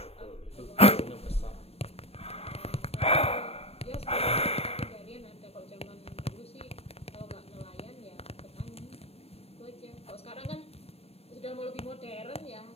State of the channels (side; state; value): right; late; 0.29 ms